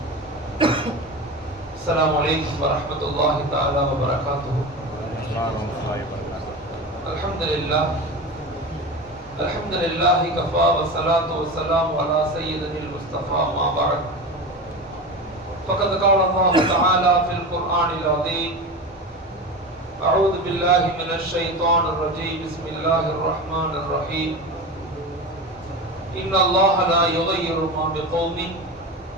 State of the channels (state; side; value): normal; both; correlation 0.26